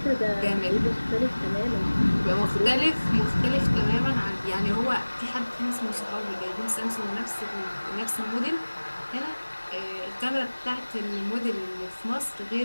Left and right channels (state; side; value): inverted; both; correlation -1.00